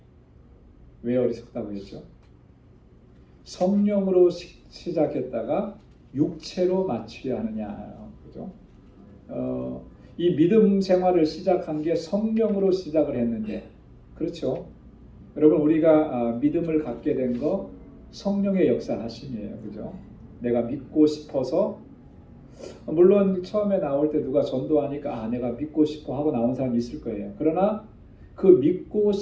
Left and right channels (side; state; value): both; identical; correlation 1.00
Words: 왜 어리석다고 했죠? 성령으로 시작했다가 육체로 마치려 하느냐, 그죠? 이 믿음 생활을 시작한 게 성령으로 시작을 했는데, 그렇죠? 여러분 우리가 믿음을 갖게 된 거 성령의 역사하심이에요, 그죠? 내가 믿고 싶어서, 물론 처음에 나올 때 누가 전도하니까 내가 믿고 싶어 하고 나온 사람이 있을 거예요. 그러나 그 믿고